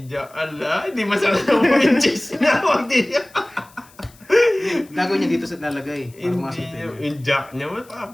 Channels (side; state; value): left; noise; hiss, 27 dB below the sound